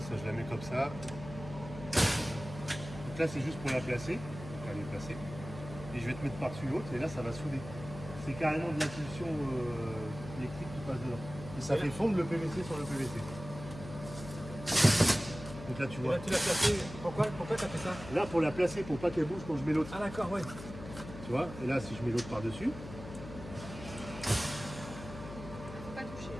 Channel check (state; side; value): noise; left; hum, 12 dB below the sound